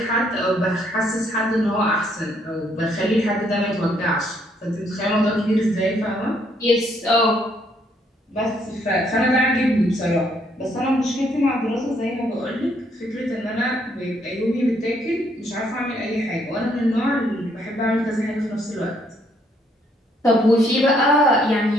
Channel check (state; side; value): normal; both; correlation 0.69